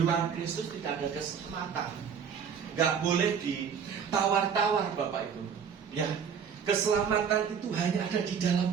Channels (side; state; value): left; quieter; 7.1 dB